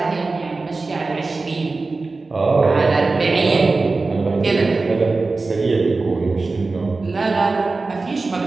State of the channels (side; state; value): left; quieter; 3.7 dB